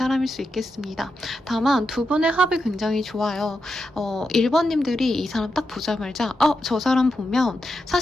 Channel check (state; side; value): normal; both; correlation 0.87